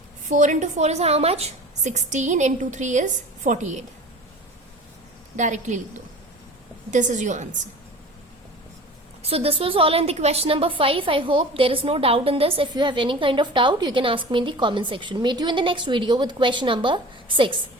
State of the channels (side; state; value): both; normal; correlation 0.39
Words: 4 into 4 is how much? 16 into 3 is 48. Directly लिख दो. This is your answer. So this was all in the question number 5. I hope there is no doubt in this. If you have any kind of doubt, you can ask me in the comment section. Meet you in the next video with question number 6.